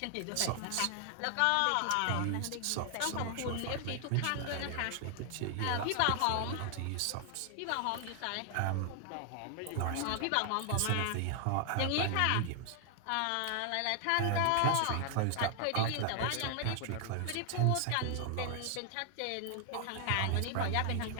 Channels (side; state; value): both; different; correlation 0.00